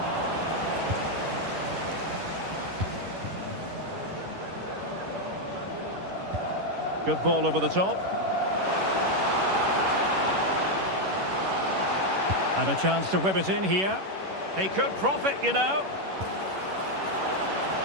Good ball over the top. And a chance to whip it in here. He could profit, you know.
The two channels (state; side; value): late; left; 11 ms